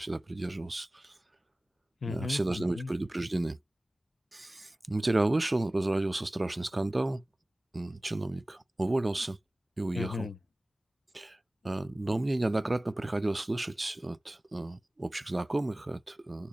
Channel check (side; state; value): both; normal; correlation 0.98